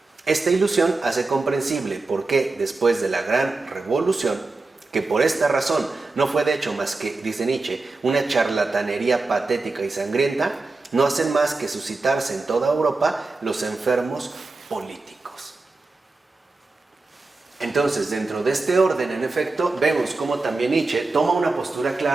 Esta ilusión hace comprensible por qué, después de la gran revolución, que por esta razón no fue de hecho más que, dice Nietzsche, una charlatanería patética y sangrienta, no hacen más que suscitarse en toda Europa los enfermos políticos. Entonces, dentro de este orden, en efecto, vemos cómo también Nietzsche toma una postura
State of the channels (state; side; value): quieter; left; 3.5 dB